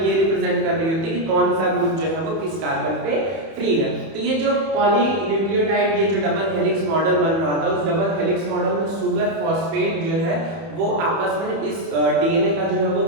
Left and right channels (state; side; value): late; left; 31 ms